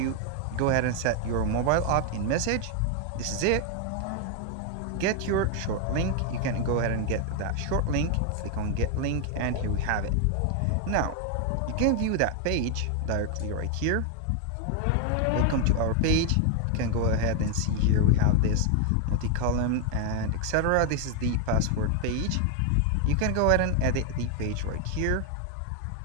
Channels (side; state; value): both; different; correlation 0.01